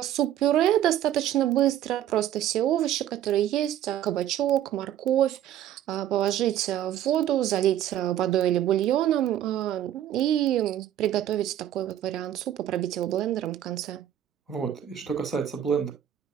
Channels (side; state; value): left; quieter; 11.4 dB